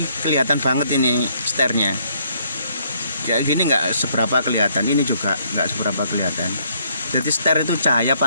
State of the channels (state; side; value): inverted; both; correlation -0.68